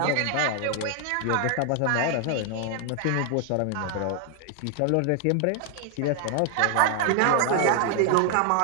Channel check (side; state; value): both; different; correlation 0.00